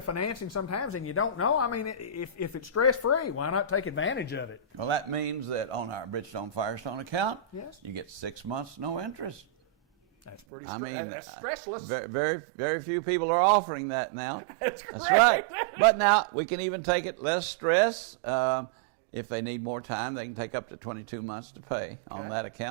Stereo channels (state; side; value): drops out; left; at 10.4 s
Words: sometimes and you don't know, I mean, if it's stress-free, why not take advantage of it? Well, that means that on our Bridgestone Firestone account, yes, you get 6 months no interest. That's pretty that's stressless. Very few people are offering that now. That's correct. That's right. But now we can even take it less stress. If they need more time, they can take up to 22 months to pay on that